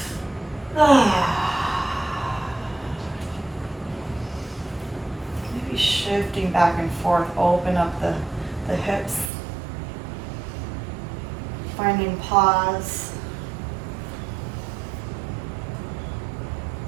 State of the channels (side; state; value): left; drops out; at 9.3 s